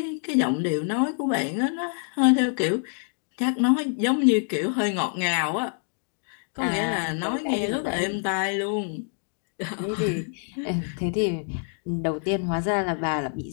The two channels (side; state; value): right; silent; 58 dB below the other